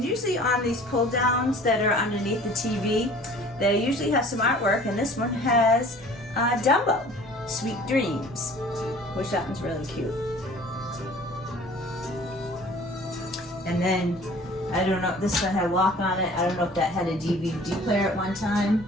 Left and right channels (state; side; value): normal; both; correlation 0.48